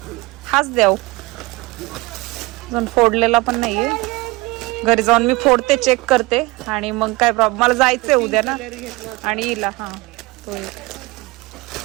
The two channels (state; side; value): quieter; left; 22.6 dB